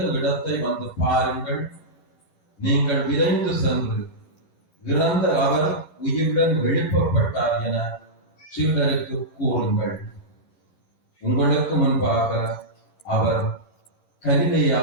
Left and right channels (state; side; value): late; right; 10 ms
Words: இடத்தை வந்து பாருங்கள். நீங்கள் விரைந்து சென்று இறந்த அவர் உயிருடன் எழுப்பப்பட்டார் என சீடருக்கு கூறுங்கள். உங்களுக்கு முன்பாக அவர்